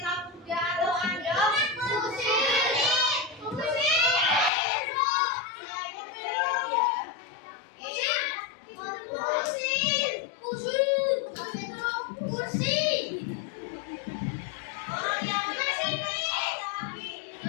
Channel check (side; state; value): right; drops out; at 4.5 s